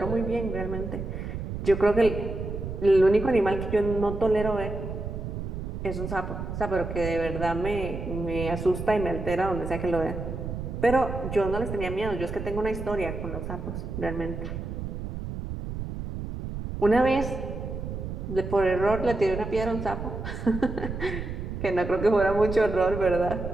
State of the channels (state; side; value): noise; right; rumble, 6 dB below the sound